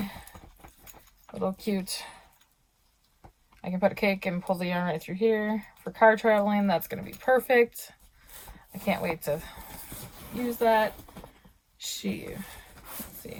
little cute, I can put a cake and pull the yarn right through here. For car traveling, that's going to be perfect. I can't wait to use that. Let's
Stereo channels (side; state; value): both; identical; correlation 1.00